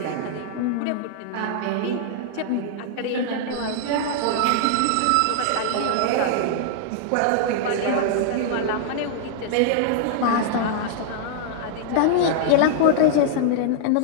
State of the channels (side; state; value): both; different; correlation -0.01